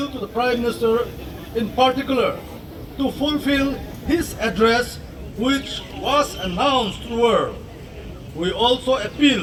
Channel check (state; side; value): identical; both; correlation 1.00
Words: to the Prime Minister in particular to fulfill his address which was announced to the world. We also